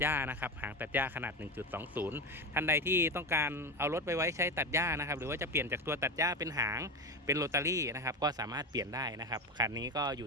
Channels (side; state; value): both; normal; correlation 0.19